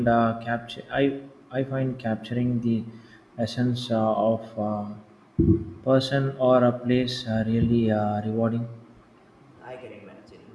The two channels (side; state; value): both; identical; correlation 1.00